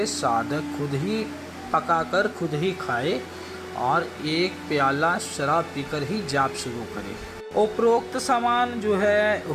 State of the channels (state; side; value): identical; both; correlation 1.00